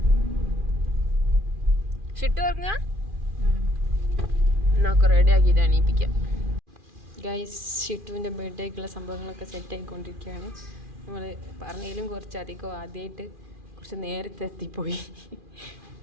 ഷിട്ടു ഉറങ്ങ എന്നൊക്കെ റെഡി ആക്കിയിട്ട് എണീപ്പിക്കാം. ഗൈസ്, ഷിട്ടുവിൻ്റെ ബർത്ത്ഡേക്കുള്ള സംഭവങ്ങളൊക്കെ സെറ്റ് ആയിക്കൊണ്ടിരിക്കുകയാണ്. നമ്മൾ പറഞ്ഞതിലും കുറച്ചധികം ആദ്യമായിട്ട് കുറച്ച് നേരത്തെ എത്തിപ്പോയി.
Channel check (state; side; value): late; left; 2.4 ms